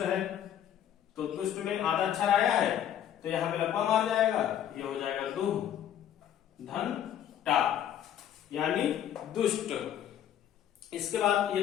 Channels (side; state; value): right; quieter; 10.3 dB